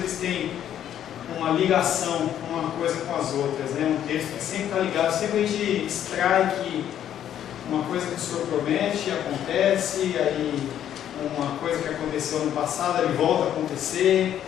têm uma ligação uma coisa com as outras, né? Um texto que sempre está ligado, sempre a gente extrai que uma coisa que o Senhor promete acontece, aí uma coisa que aconteceu no passado ele volta a acontecer,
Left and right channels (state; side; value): quieter; right; 10.5 dB